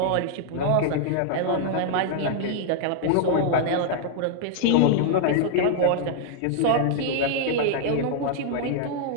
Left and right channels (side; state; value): both; different; correlation -0.01